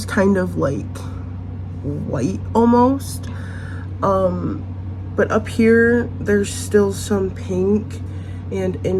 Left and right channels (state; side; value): identical; both; correlation 1.00